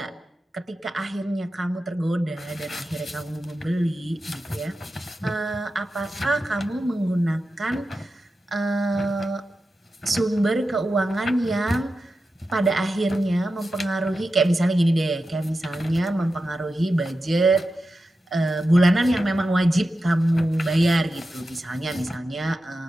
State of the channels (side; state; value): both; normal; correlation 0.91